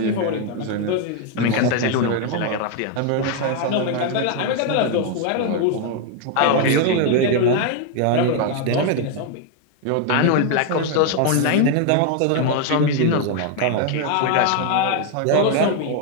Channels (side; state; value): both; different; correlation 0.01